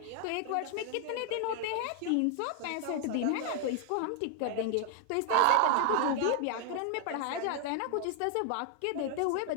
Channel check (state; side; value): different; both; correlation 0.00